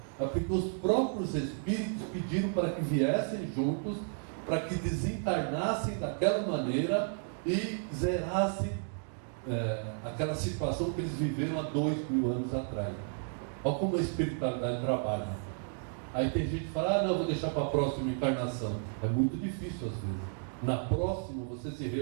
É porque os próprios espíritos pediram para que viessem juntos, para que desencarnassem daquela maneira e zerassem aquela situação que eles viveram há 2000 anos atrás. Olha como a espiritualidade trabalha. Aí tem gente que fala, não, vou deixar para a próxima encarnação. É muito difícil às vezes. Na próxima, você se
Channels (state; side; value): silent; left; 56 dB below the other